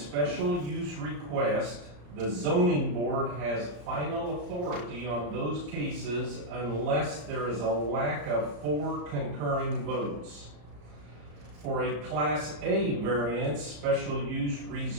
use requests, the zoning board has final authority on those cases unless there is a lack of 4 concurring votes. For a Class A variance, special use,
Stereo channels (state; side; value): late; left; 34 ms